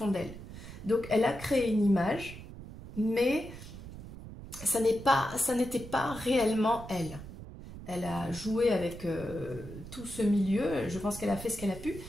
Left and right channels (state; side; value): noise; right; rumble, 13 dB below the sound